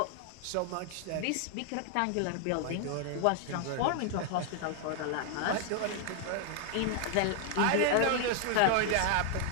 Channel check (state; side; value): different; both; correlation 0.00